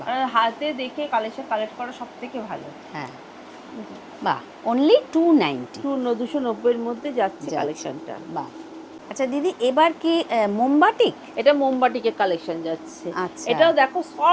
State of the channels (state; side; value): identical; both; correlation 1.00